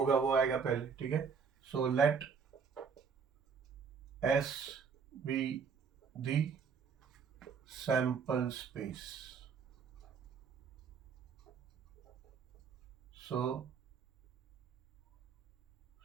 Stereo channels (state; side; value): quieter; left; 6.1 dB